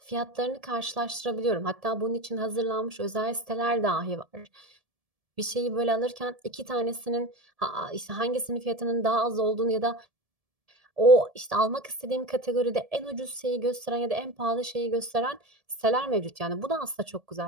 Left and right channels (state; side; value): late; left; 1.7 ms